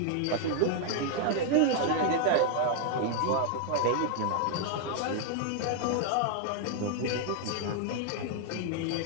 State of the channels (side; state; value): both; different; correlation 0.00